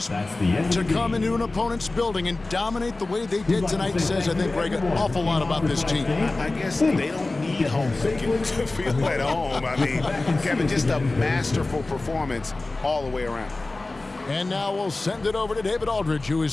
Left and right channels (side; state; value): right; quieter; 3.1 dB